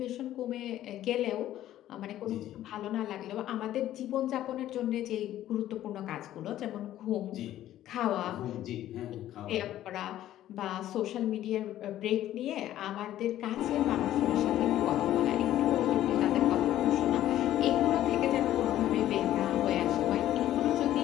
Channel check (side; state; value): right; quieter; 13.0 dB